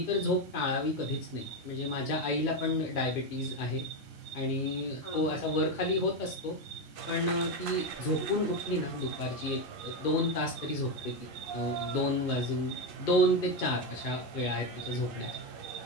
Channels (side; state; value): both; normal; correlation 0.11